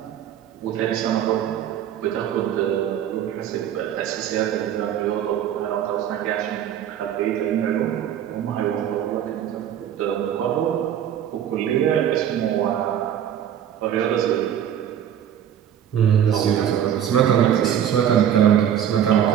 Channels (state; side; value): quieter; left; 9.9 dB